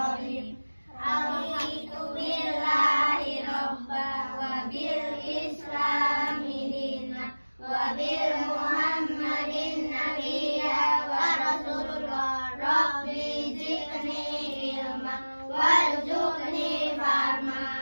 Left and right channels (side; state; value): both; inverted; correlation -1.00